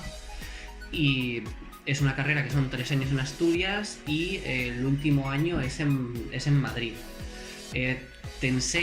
y es una carrera que son 3 años en Asturias y el último año es en Madrid. Eh, Te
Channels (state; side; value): identical; both; correlation 1.00